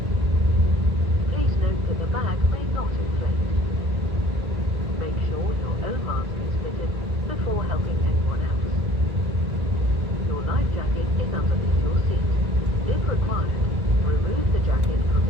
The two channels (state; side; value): late; left; 1.8 ms